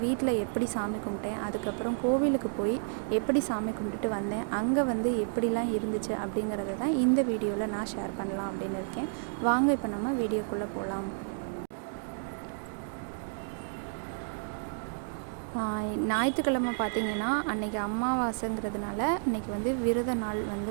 வீட்டில் எப்படி சாமி கும்பிட்டேன், அதுக்கப்புறம் கோவிலுக்கு போய் எப்படி சாமி கும்பிட்டுட்டு வந்தேன், அங்கே எப்படிலாம் இருந்துச்சு அப்படிங்கிறத தான் இந்த வீடியோவில் நான் ஷேர் பண்ணலாம் அப்படின்னு இருக்கேன். வாங்க இப்போ நம்ம வீடியோக்குள்ளே போகலாம். ஞாயிற்றுக்கிழமை பார்த்திங்கன்னா அன்றைக்கி அமாவாசைங்கிறதுனால அன்றைக்கி விரத நாள்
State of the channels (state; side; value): silent; left; digital silence